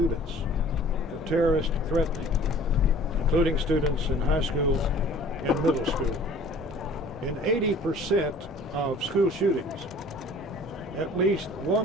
of terrorist threatening, including students in high school and middle school. In 80% of school shootings, at least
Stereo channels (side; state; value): both; normal; correlation 0.49